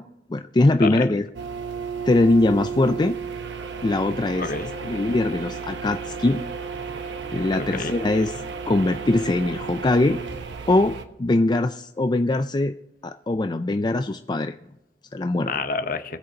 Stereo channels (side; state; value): both; normal; correlation 0.76